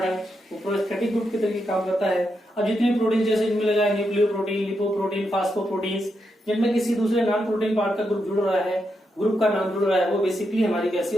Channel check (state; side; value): normal; both; correlation 0.83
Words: है वो प्रोस्थेटिक ग्रुप की तरीके काम करता है। अब जितने प्रोटीन जैसे इनमें लगा है न्यूक्लियोप्रोटीन, लिपोप्रोटीन, फास्फोप्रोटीन्स, जिनमें किसी दूसरे नॉन प्रोटीन पार्ट का ग्रुप जुड़ रहा है, ग्रुप का नाम जुड़ रहा है, वो बेसिकली हमारी कैसी